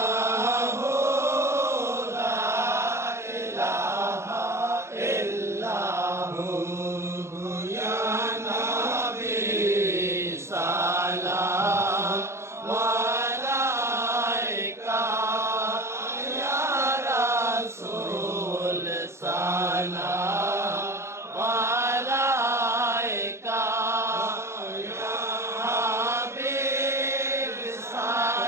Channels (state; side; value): late; left; 0.13 ms